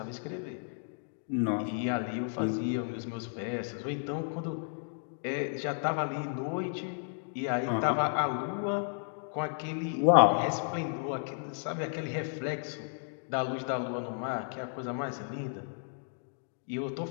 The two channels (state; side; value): silent; right; digital silence